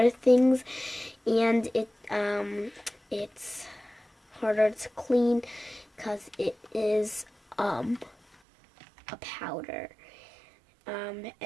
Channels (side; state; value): left; drops out; at 8.3 s